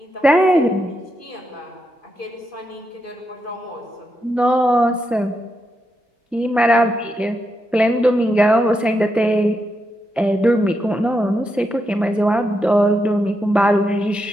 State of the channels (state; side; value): normal; both; correlation 0.84